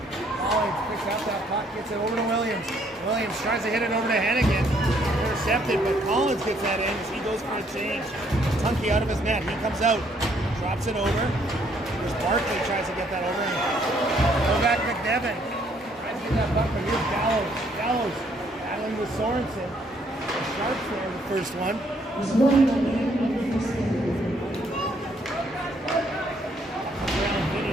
Collins picks out that puck, gets it over to Williams. Williams tries to hit it over to Hennigan. Intercepted, but Collins gets that in as he goes for a change. Tunky out of his net. He comes out, drops it over. There's Barkley tries to get that over. Go back McDevitt. Tries to get that puck, but here's Gallows. Gallows battling with Sorensen. The Sharks there, the first one.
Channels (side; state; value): both; normal; correlation 0.67